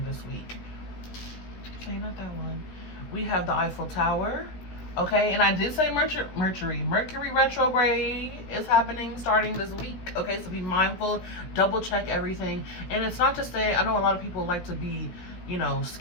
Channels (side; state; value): right; late; 16 ms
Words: this week. So not that one. We have the Eiffel Tower. Okay, and I did say Mercury retrograde is happening starting this week. Okay, so be mindful, double check everything. And it's not to say, I know a lot of people like to be, you know,